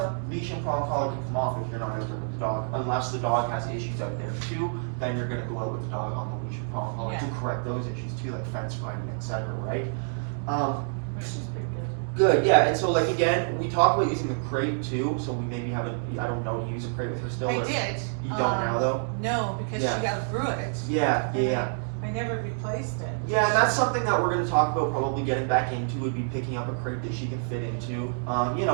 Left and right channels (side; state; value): left; silent; digital silence